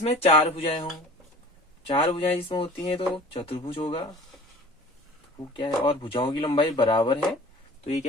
4 भुजाएं हों। 4 भुजाएं जिसमें होती हैं तो चतुर्भुज होगा। वो क्या है, और भुजाओं की लंबाई बराबर है, तो ये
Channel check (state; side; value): normal; both; correlation 0.44